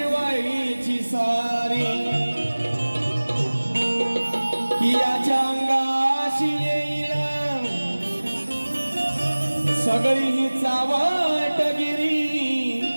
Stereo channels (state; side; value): inverted; both; correlation -1.00